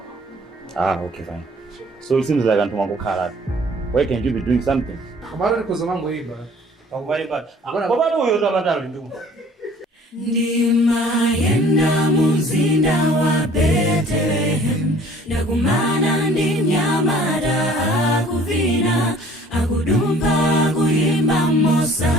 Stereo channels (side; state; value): both; normal; correlation 0.53